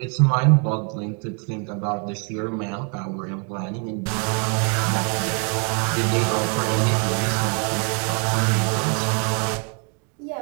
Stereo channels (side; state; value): left; quieter; 38.7 dB